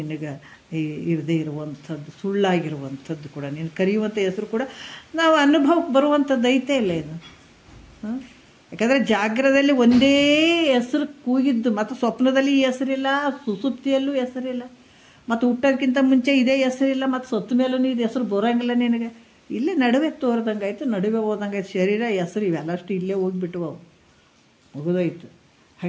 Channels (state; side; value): identical; both; correlation 1.00